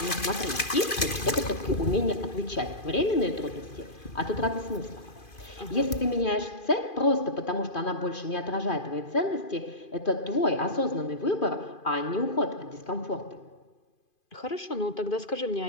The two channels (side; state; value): right; late; 2.5 ms